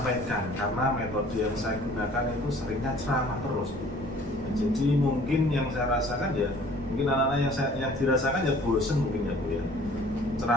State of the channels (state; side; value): noise; right; rumble, 16 dB below the sound